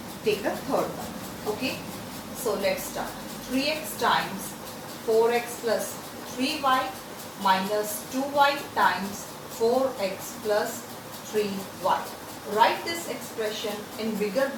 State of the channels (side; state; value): both; identical; correlation 1.00